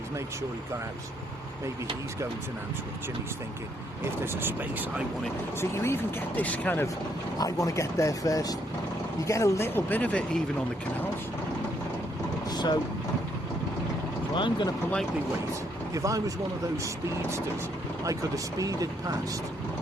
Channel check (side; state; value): both; normal; correlation 0.72